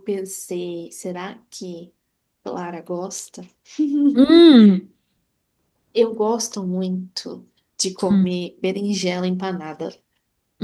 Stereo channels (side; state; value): both; identical; correlation 1.00